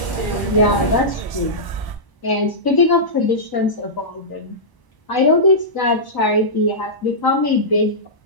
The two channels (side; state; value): right; late; 1.0 ms